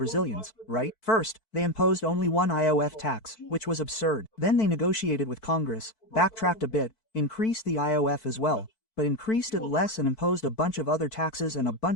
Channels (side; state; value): right; late; 4.5 ms